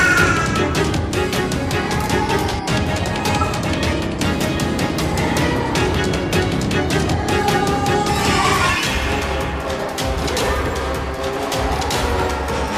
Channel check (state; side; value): identical; both; correlation 1.00